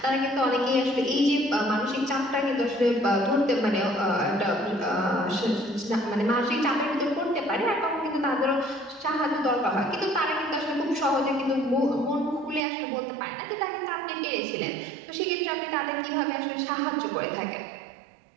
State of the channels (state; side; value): drops out; left; at 12.6 s